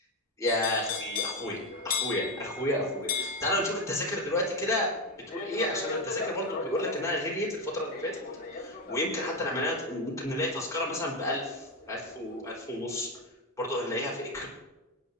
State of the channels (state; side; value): normal; both; correlation 0.11